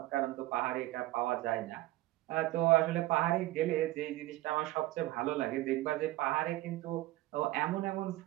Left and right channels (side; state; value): left; quieter; 17.2 dB